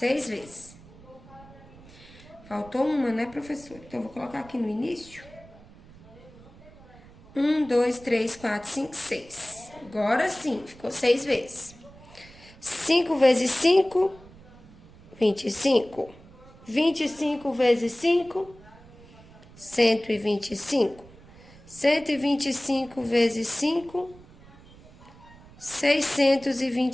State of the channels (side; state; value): right; noise; rumble, 22 dB below the sound